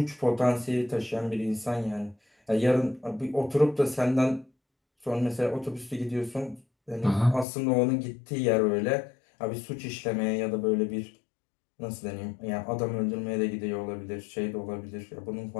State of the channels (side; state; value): right; drops out; at 7.5 s